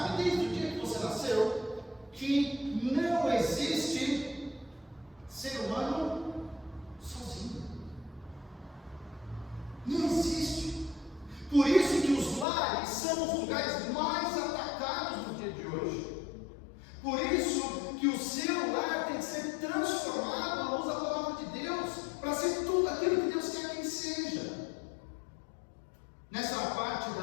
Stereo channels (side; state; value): right; drops out; at 12.5 s